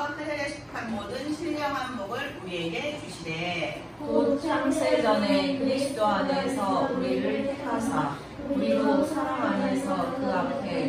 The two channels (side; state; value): both; identical; correlation 1.00